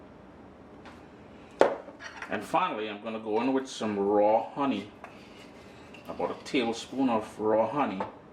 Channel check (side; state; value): both; identical; correlation 1.00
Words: And finally, I'm going to go in with some raw honey. About a tablespoon of raw honey.